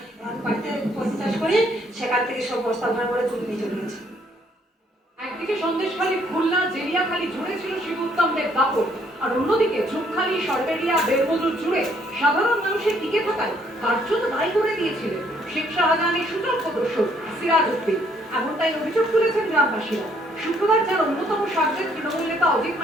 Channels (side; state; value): both; normal; correlation 0.66